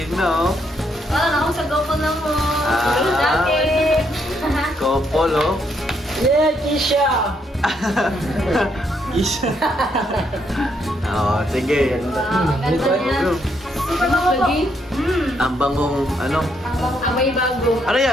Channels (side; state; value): both; normal; correlation 0.75